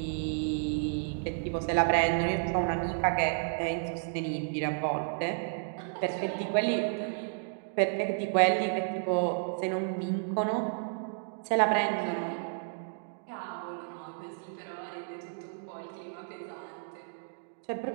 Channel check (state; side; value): silent; left; digital silence